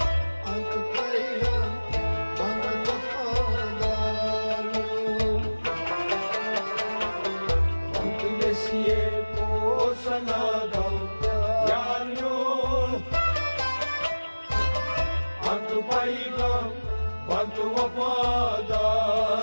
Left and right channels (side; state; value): both; inverted; correlation -1.00